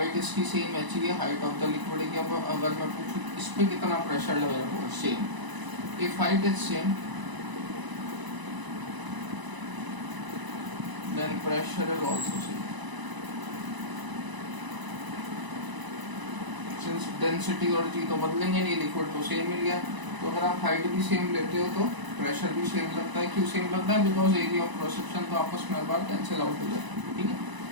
इसकी सेम एच ही है, हाइट ऑफ द लिक्विड की। अब अगर मैं पूछूं इस पे कितना प्रेशर लग रहा होगा, same. If height is same then pressure is also same. Since density और जी तो बदलेंगे नहीं, लिक्विड तो सेम ही लिया, तो अगर आप हाइट भी सेम लेते हो तो प्रेशर भी सेम लगता है। क्यों सेम लगता है? Because area of cross section तो आपस में बार कैंसिल आउट हो जाता है, ठीक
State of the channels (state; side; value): late; left; 1.0 ms